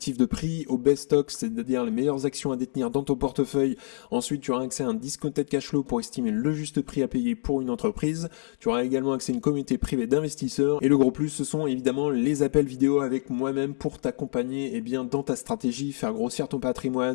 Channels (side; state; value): right; silent; digital silence